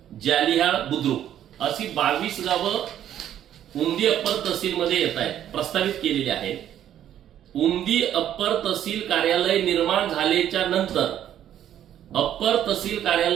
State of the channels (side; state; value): left; quieter; 10.9 dB